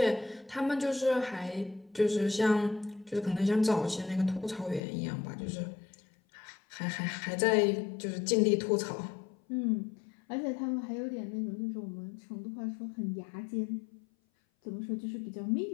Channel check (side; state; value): right; drops out; at 4.8 s